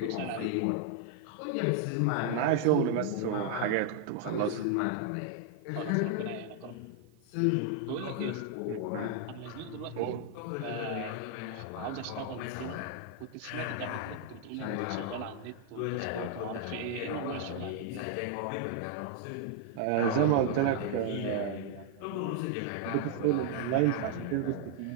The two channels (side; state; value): both; different; correlation 0.00